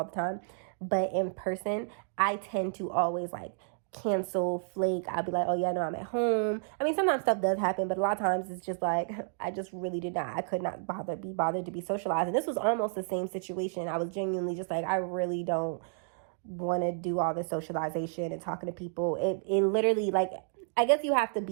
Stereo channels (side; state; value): left; silent; digital silence